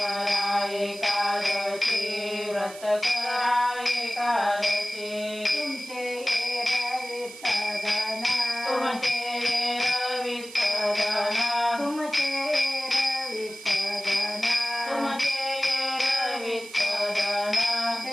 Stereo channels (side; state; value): right; noise; hiss, 16 dB below the sound